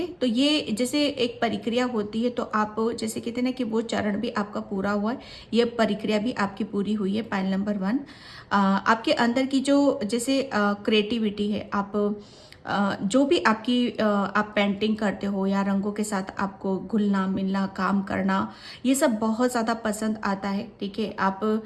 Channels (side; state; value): both; identical; correlation 1.00